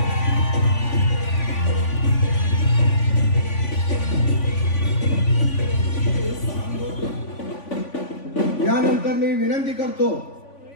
यानंतर मी विनंती करतो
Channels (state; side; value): late; right; 3.5 ms